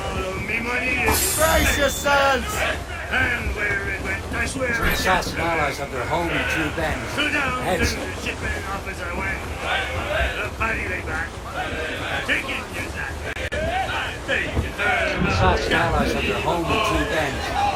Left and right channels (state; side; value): identical; both; correlation 1.00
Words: Brace yourselves! And where it went, I swear. The assassin allies have their home in Two Bends. Heads. The shipment officer went. The paddy lay back. Take it, you that. The assassin allies have their home in Two Bends.